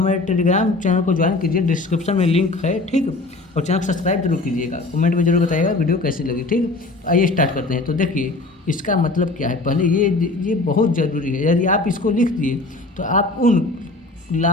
टेलीग्राम चैनल को ज्वाइन कीजिए, डिस्क्रिप्शन में लिंक है। ठीक, और चैनल को सब्सक्राइब जरूर कीजिएगा। कमेंट में जरूर बताइएगा वीडियो कैसी लगी। ठीक, तो आइए स्टार्ट करते हैं। तो देखिए इसका मतलब क्या है, पहले ये बहुत ज़रूरी है। यदि आप इसको लिख दिए तो आप उन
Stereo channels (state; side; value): quieter; right; 3.2 dB